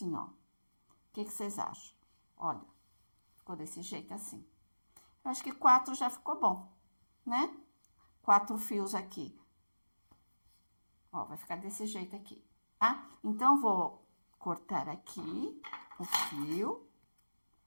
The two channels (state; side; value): inverted; both; correlation -1.00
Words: ó. O que vocês acham? Olha, ficou desse jeito assim. Eu acho que 4 já ficou bom, né? 4 fios aqui. Ó, vai ficar desse jeito aqui, tá? Então, vou cortar aqui o fio.